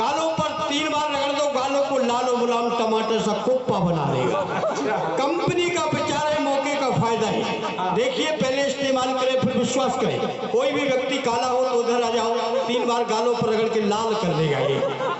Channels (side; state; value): both; identical; correlation 1.00